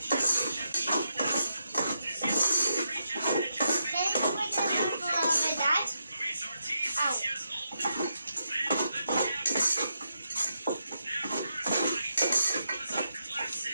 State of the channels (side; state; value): both; inverted; correlation -0.82